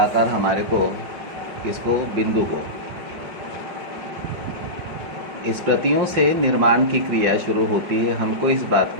आकर हमारे को इसको बिंदु को स्मृतियों से निर्माण की क्रिया शुरू होती है। हमको इस बात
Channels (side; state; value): left; late; 5.1 ms